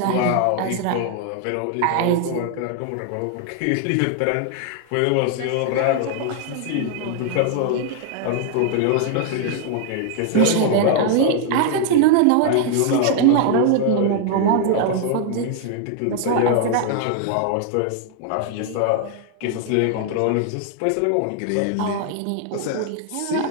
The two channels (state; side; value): different; both; correlation 0.00